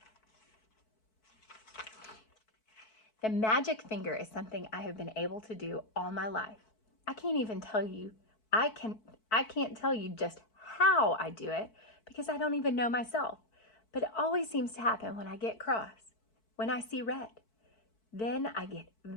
The magic finger is something I have been able to do all my life. I can't even tell you I can't tell you just how I do it because I don't even know myself, but it always seems to happen when I get cross, when I see red. Then I get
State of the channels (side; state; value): right; late; 4.6 ms